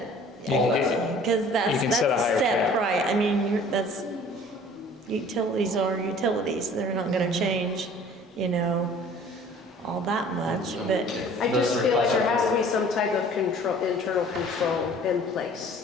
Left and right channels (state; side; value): normal; both; correlation 0.50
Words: that's You can a set a higher set cap. price. I mean, that's, utilities are utilities. They're not gonna change, you know, all that much, but I just feel like there has to be some type of control, internal control in